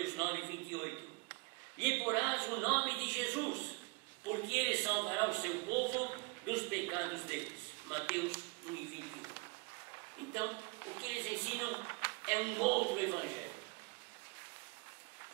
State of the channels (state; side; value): quieter; left; 28.8 dB